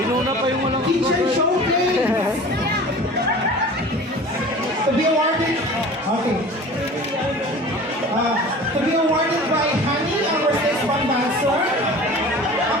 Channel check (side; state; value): both; normal; correlation 0.40